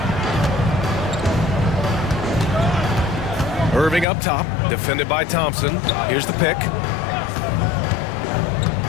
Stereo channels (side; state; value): right; drops out; at 4.0 s